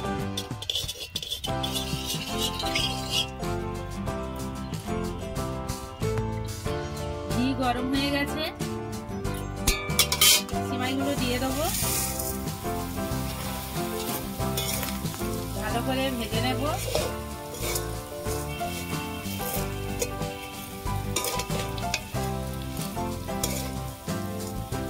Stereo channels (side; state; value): both; identical; correlation 1.00